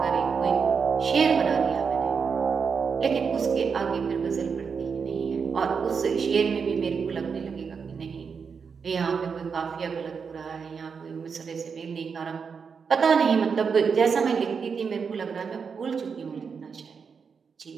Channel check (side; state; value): left; quieter; 5.9 dB